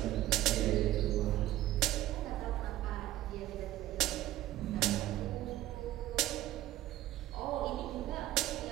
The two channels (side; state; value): left; quieter; 15.1 dB